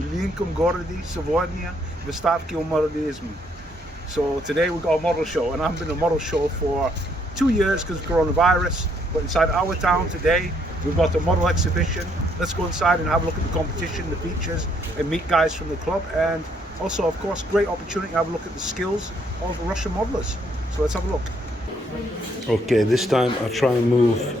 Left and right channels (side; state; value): both; normal; correlation 0.70